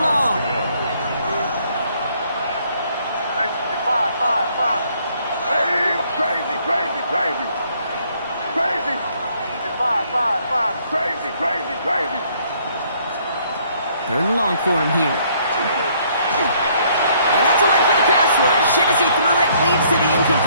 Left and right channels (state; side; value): inverted; both; correlation -0.65